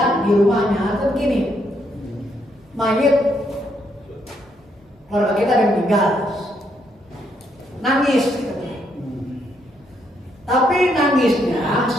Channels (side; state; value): both; normal; correlation 0.75